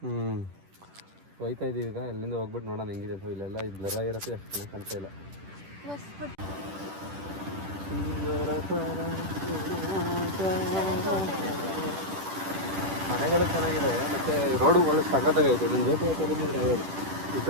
ಹೋಯ್ತಾ ಇದೀವಿ ಈಗ. ಎಲ್ಲಿಂದ ಹೋಗ್ಬಿಟ್ಟು ನೋಡೋಣ ಹೆಂಗಿದೆ ಅಂತ. ಇಲ್ಲೆಲ್ಲ ಇದು ಬ್ಲರ್ ಆಗಿರುತ್ತೆ, ಅಷ್ಟು ಚೆನ್ನಾಗಿ ಕಾಣ್ತಾ ಇಲ್ಲ. ಮನೆಗಳು ಚೆನ್ನಾಗಿದೆ, ಮತ್ತೆ ರೋಡು ಒಳ್ಳೆ ಸಖತ್ತಾಗೈತೆ. ನನ್ನ ಜೊತೆ ಬಂದಿದ್ರೆ ಯಾವ್ದು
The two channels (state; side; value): late; left; 10 ms